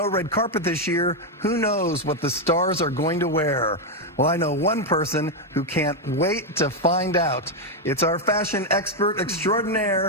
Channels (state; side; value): normal; both; correlation 0.03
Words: red carpet this year, who knows what the stars are going to wear? Well, I know one person who can't wait to find out. It's our fashion expert